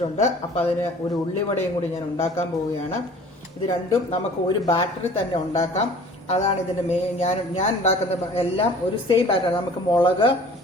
അപ്പം അതിന് ഒരു ഉള്ളിവടയും കൂടി ഞാൻ ഉണ്ടാക്കാൻ പോവുകയാണ്. ഇത് രണ്ടും നമുക്ക് ഒരു ബാറ്ററിൽ തന്നെ ഉണ്ടാക്കാം. അതാണ് ഇതിന്റെ മെയിൻ. ഞാൻ ഉണ്ടാക്കുന്ന എല്ലാം ഒരു സെയിം ബാറ്റർ. നമുക്ക് മുളക്,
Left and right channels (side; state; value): both; normal; correlation 0.48